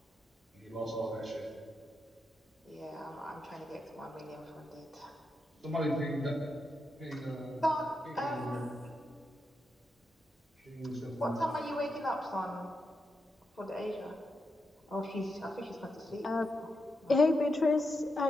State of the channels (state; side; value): normal; both; correlation 0.85